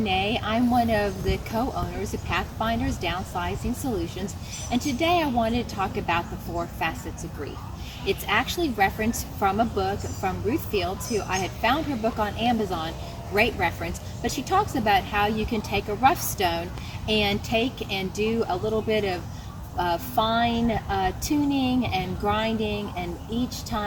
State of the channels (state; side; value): identical; both; correlation 1.00